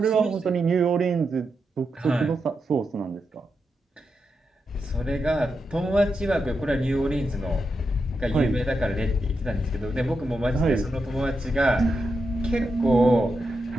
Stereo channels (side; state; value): both; normal; correlation 0.86